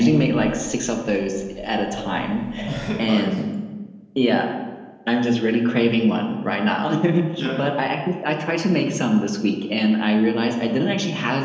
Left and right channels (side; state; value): both; identical; correlation 1.00